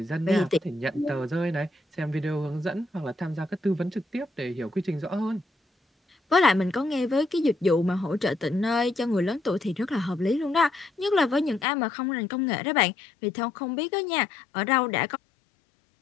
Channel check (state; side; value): drops out; right; at 11.7 s